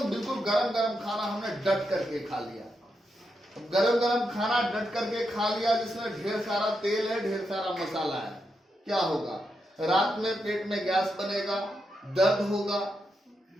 बिल्कुल गरम गरम खाना हमने डट करके खा लिया। गरम गरम खाना डट करके खा लिया जिसमें ढेर सारा तेल है, ढेर सारा मसाला है, क्या होगा, रात में पेट में गैस बनेगा, दर्द होगा,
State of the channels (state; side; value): normal; both; correlation 0.84